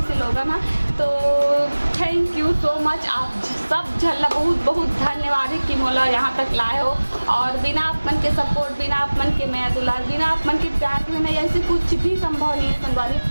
से लोगन है। तो थैंक यू सो मच, आप सब झल्ला बहुत बहुत धन्यवाद है कि मोला यहाँ तक लाए हो। और बिना अपन के सपोर्ट, बिना अपन के मैं दुलार, बिना अपन के प्यार में नहीं ऐसे कुछ भी संभव नहीं है संगवारी।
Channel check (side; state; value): both; inverted; correlation -1.00